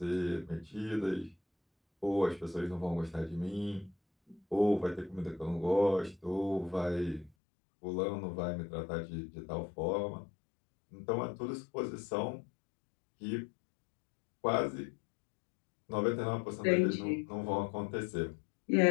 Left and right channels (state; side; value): drops out; right; at 7.3 s